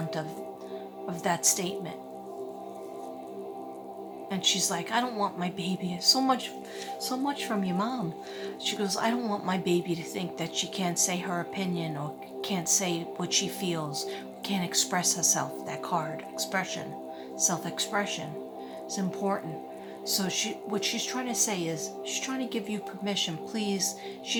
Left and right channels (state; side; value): identical; both; correlation 1.00